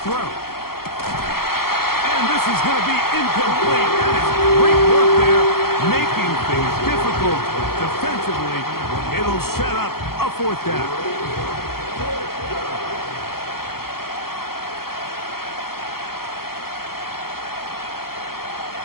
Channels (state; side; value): late; right; 0.94 ms